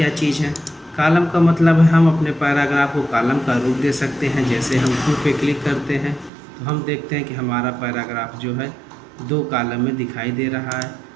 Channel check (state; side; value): drops out; left; at 6.3 s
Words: चीज़ है? कॉलम का मतलब है हम अपने पैराग्राफ को कॉलम का रूप दे सकते हैं। जैसे हम 2 पे क्लिक करते हैं तो हम देखते हैं कि हमारा पैराग्राफ जो है 2 कॉलम में दिखाई दे रहा है।